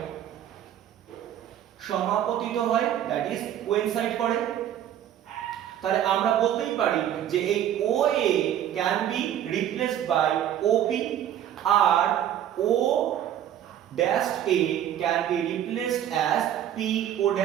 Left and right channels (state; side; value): quieter; left; 10.8 dB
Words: সমাপতিত হয়, দ্যাট ইজ কোইনসাইড করে। তাহলে আমরা বলতেই পারি যে এই OA can be replaced by OP আর O dash A can be replaced as PO